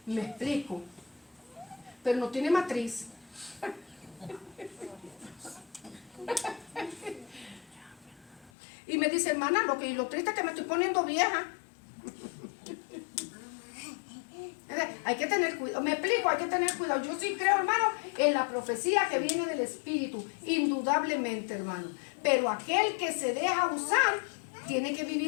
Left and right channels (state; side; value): drops out; right; at 8.5 s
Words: Me explico. Pero no tiene matriz. Y me dice, hermana, lo triste es que me estoy poniendo vieja. Hay que tener cuidado, me explico, hay que tener cuidado. Yo sí creo, hermano, en la profecía que viene del Espíritu, indudablemente, hermano. Pero aquel que se deja usar, tiene que